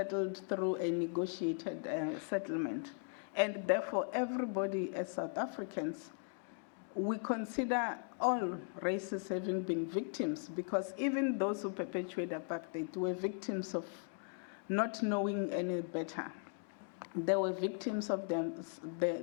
through a negotiated settlement. And therefore, everybody as South Africans, we consider all races having been victims, because even those who perpetuate apartheid were victims of not knowing any better. They were victims of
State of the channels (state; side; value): silent; right; 52 dB below the other